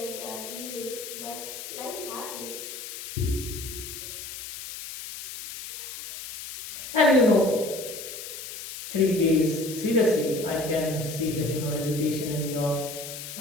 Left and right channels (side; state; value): left; noise; hiss, 10 dB below the sound